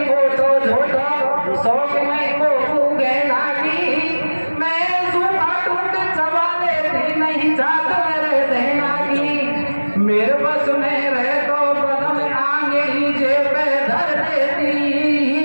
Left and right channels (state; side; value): inverted; both; correlation -1.00